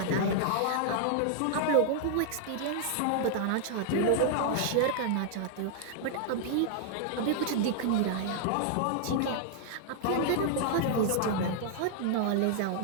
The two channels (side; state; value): both; different; correlation -0.01